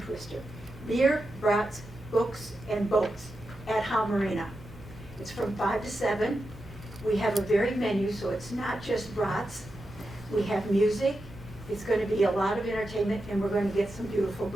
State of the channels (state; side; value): noise; right; hum, 19 dB below the sound